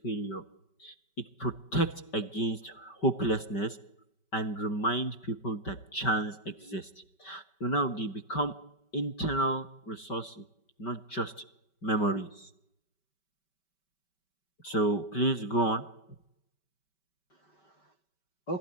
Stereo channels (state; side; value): late; right; 5.2 ms